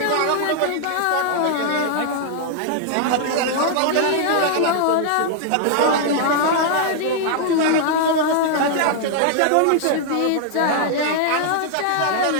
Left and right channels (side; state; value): both; different; correlation 0.00